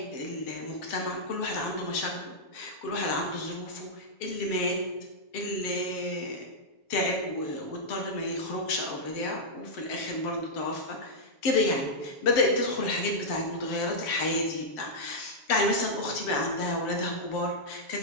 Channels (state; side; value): late; right; 7.1 ms